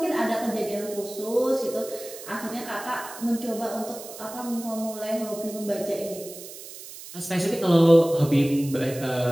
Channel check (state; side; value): noise; right; hiss, 14 dB below the sound